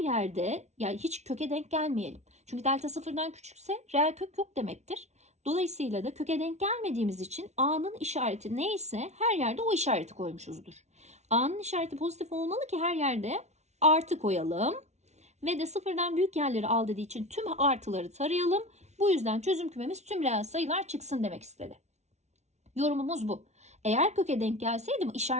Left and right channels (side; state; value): left; late; 0.32 ms